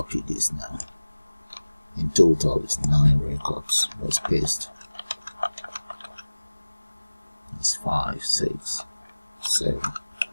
this now. In total it's 9 records. Let's paste. It's 5, 6, 7,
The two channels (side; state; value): both; inverted; correlation -1.00